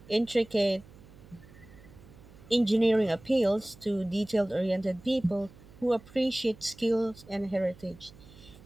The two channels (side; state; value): right; noise; hum, 22 dB below the sound